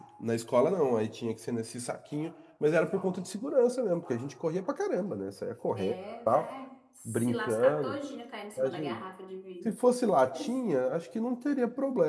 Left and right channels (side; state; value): both; identical; correlation 1.00